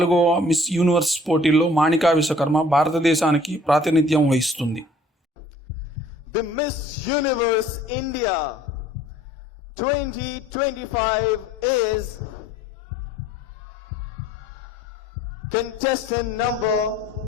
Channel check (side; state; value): both; normal; correlation 0.54